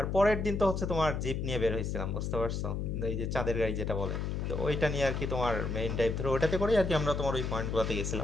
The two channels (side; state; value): left; noise; hum, 2 dB below the sound